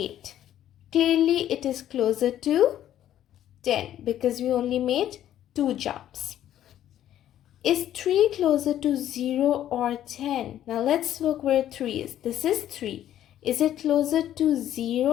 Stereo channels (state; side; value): quieter; right; 11.7 dB